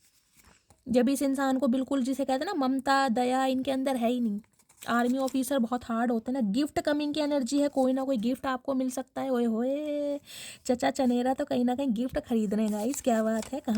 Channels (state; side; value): identical; both; correlation 1.00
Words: जब इस इंसान को बिल्कुल, जिसे कहते हैं ना ममता दया इनके अंदर है ही नहीं। आर्मी ऑफिसर बहुत हार्ड होते हैं ना। गिफ्ट कमिंग की एनर्जी है, कोई ना कोई गिफ्ट आपको मिल सकता है। ओए होए, चचा चनेरा तो कहीं ना कहीं गिफ्ट खरीद रहे हैं गाइस, क्या बात है।